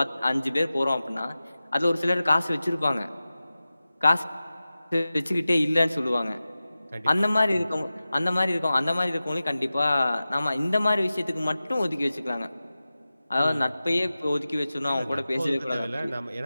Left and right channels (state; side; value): inverted; both; correlation -0.96